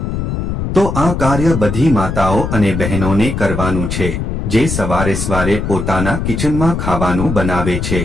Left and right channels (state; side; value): noise; left; rumble, 3 dB below the sound